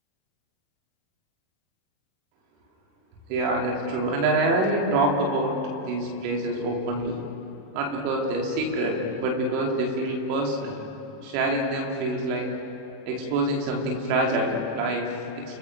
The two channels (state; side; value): late; left; 27 ms